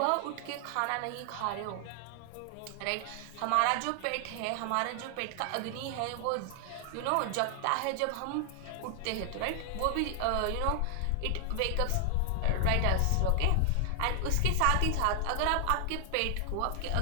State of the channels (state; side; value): different; both; correlation 0.00